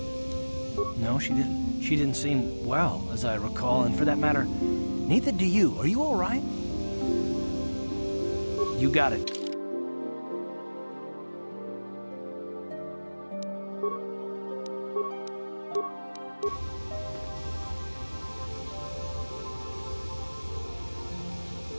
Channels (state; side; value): inverted; both; correlation -1.00